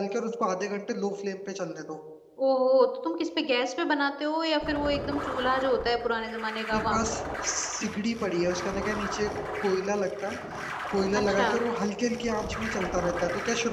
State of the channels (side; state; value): both; identical; correlation 1.00